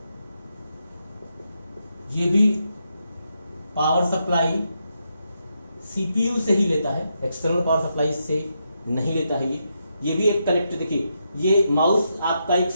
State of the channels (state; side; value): inverted; both; correlation -0.82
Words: ये भी पावर सप्लाई सीपीयू से ही लेता है, एक्सटर्नल पावर सप्लाई से नहीं लेता है। ये भी एक कनेक्टेड, देखिए ये माउस आपका एक